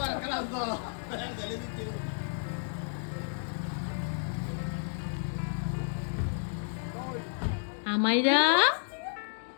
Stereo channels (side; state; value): right; silent; digital silence